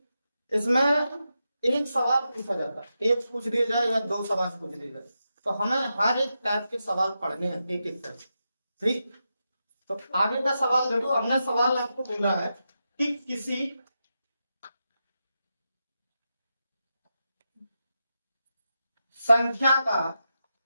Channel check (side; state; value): both; inverted; correlation -0.88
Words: इसमें एक सवाल पूछा जाता है, एक पूछ दिया जाए या 2 सवाल पूछ दिए जाए, तो हमें हर एक टाइप के सवाल पढ़ने हैं एक एक करके। ठीक, तो आगे का सवाल देखो। हमने सवाल आपको बोला है कि किसी संख्या का